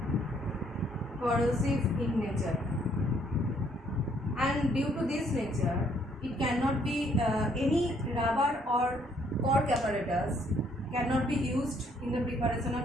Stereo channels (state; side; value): normal; both; correlation 0.66